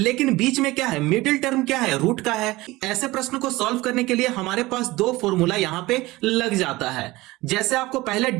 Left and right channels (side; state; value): left; quieter; 19.8 dB